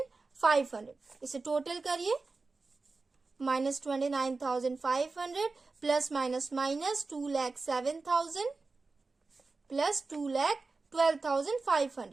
इसे टोटल करिए, minus 29,500 plus minus minus 2,07,000 plus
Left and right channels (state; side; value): quieter; left; 3.9 dB